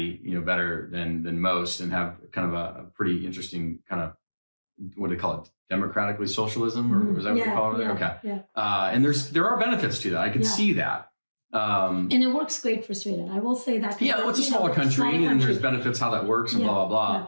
better than most, and have kind of a pretty interesting kind of, what do they call it? Democratically socialism, or is that what they call it? Okay. Yeah. And there are benefits to that. I can see that. And it works great for Sweden. I will say that. Yeah, it's a smaller country, and there's benefits how that works and blah, blah, blah.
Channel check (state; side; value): inverted; both; correlation -1.00